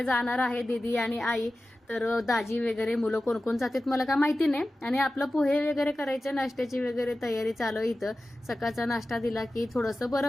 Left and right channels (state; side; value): normal; both; correlation 0.95